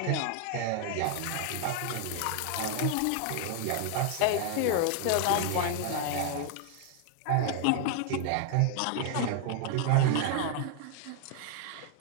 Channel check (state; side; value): different; both; correlation 0.00